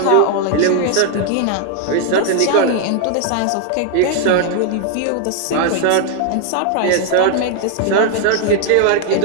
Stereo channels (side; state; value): both; different; correlation 0.00